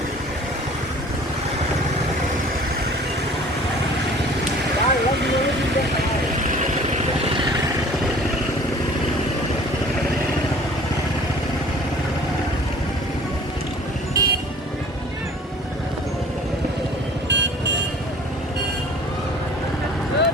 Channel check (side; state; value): both; normal; correlation 0.48